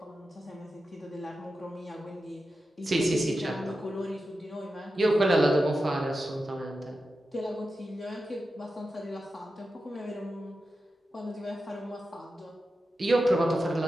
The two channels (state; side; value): normal; both; correlation 0.91